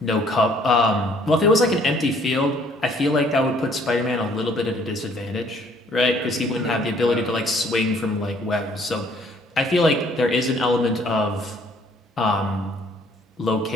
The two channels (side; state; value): both; normal; correlation 0.61